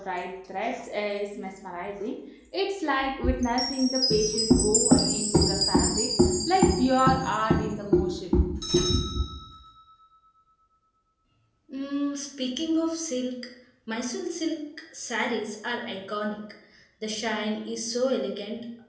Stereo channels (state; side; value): identical; both; correlation 1.00